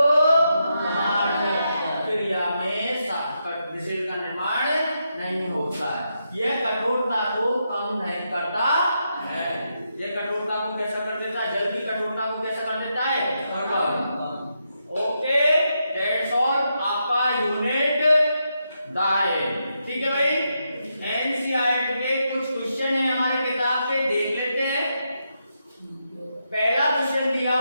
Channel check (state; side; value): inverted; both; correlation -0.83